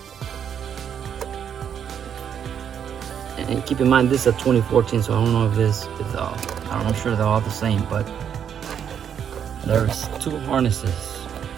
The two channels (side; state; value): left; quieter; 8.4 dB